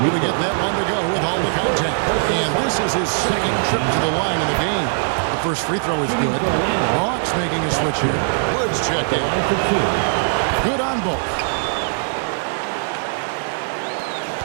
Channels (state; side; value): silent; left; digital silence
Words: to get that one to go with all the contact. And this is his second trip to the line in the game. The first free throw is good. Hawks making a switch here. Woods check in. Good on both.